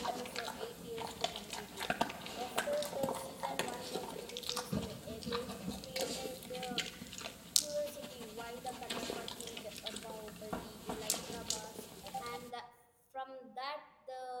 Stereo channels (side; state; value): both; identical; correlation 1.00